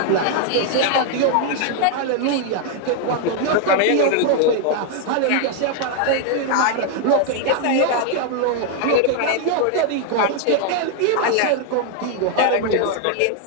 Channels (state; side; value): different; both; correlation 0.00